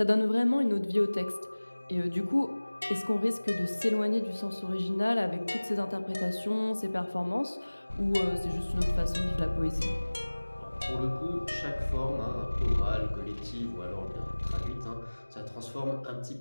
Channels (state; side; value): inverted; both; correlation -1.00